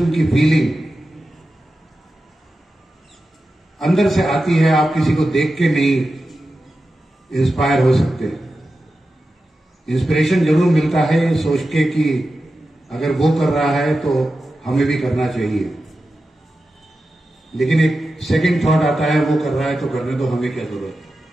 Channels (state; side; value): normal; both; correlation 0.92